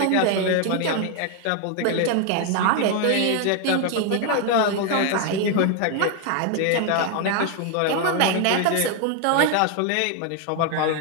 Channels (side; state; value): both; different; correlation 0.01